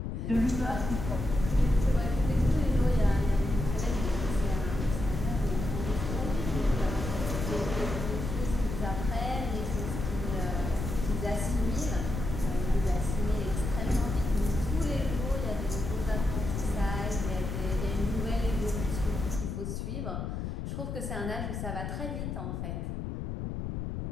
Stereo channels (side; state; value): left; noise; rumble, 4 dB below the sound